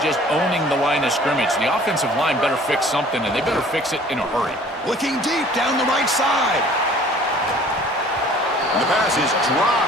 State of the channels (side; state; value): both; normal; correlation 0.51